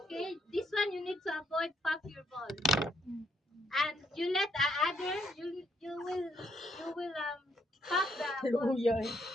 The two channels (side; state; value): both; normal; correlation 0.73